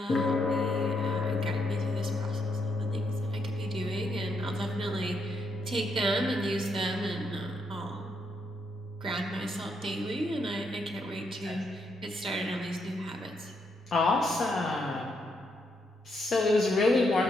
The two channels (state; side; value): normal; both; correlation 0.78